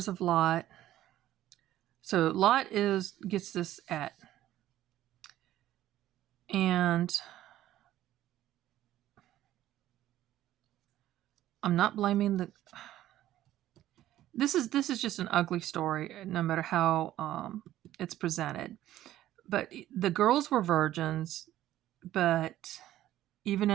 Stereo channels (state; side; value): quieter; left; 13.5 dB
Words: of Lot. So Lot gets this at. And I'm not blaming this is just an ugly story, no matter how it's presented. But the girls were virgins, but even